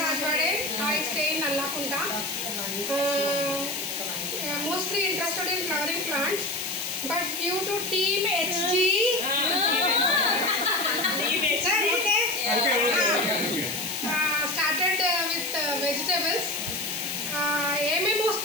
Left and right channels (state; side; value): noise; left; hiss, 7 dB below the sound